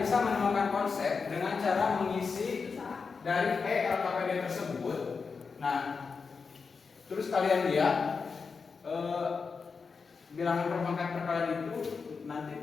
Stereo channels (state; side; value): quieter; right; 5.1 dB